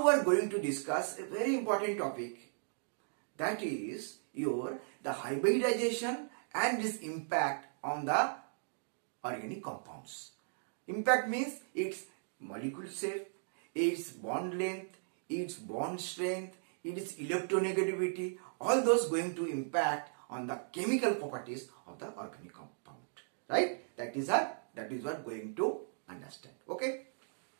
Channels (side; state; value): left; silent; digital silence